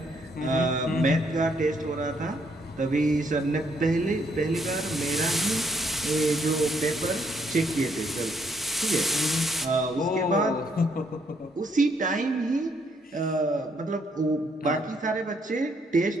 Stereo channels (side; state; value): both; normal; correlation 0.71